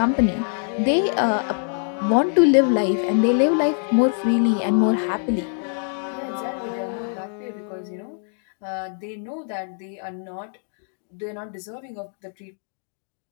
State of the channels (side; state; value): right; silent; 63 dB below the other